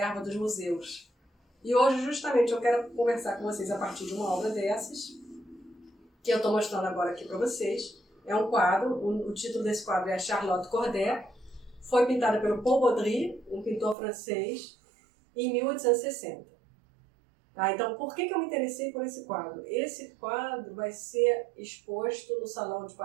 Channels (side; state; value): left; drops out; at 14.0 s